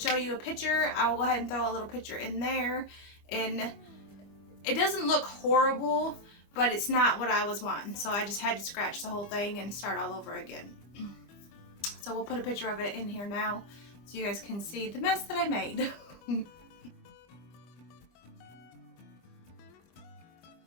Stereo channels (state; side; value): late; right; 25 ms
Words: show you a picture. I will go ahead and throw a little picture in there, and it doesn't look horrible, but it's not what I was wanting, so I just had to scratch the whole thing and start all over again. So we'll put a picture of it in here now so you guys can see the mess that I made.